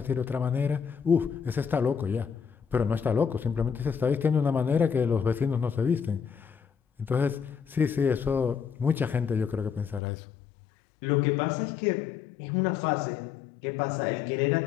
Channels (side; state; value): right; drops out; at 10.0 s